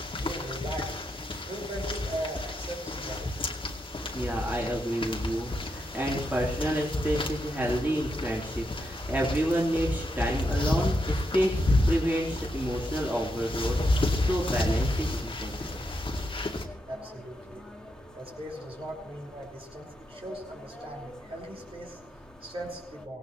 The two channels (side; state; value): both; normal; correlation 0.82